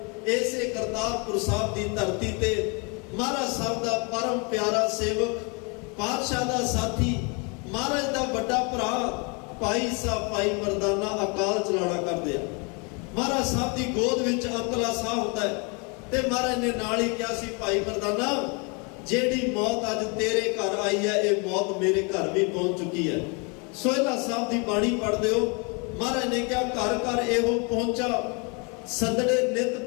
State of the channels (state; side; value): quieter; right; 32.4 dB